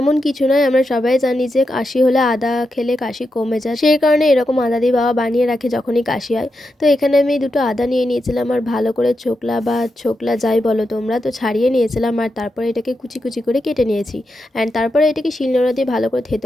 কিছু নয়, আমরা সবাই জানি যে কাশি হলে আদা খেলে কাশি কমে যায়, সেই কারণে এরকম আদা দিয়ে বাবা বানিয়ে রাখে যখনই কাশি হয়। তো এখানে আমি দুটো আদা নিয়ে নিয়েছিলাম আর ভালো করে ছোকলা যাই বলো তোমরা, তো ছাড়িয়ে নিয়েছিলাম। আর তারপরে এটাকে কুচি কুচি করে কেটে নিয়েছি। অ্যান্ড তারপরে এটাকে শিলনোড়া দিয়ে ভালো করে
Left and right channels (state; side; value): normal; both; correlation 0.87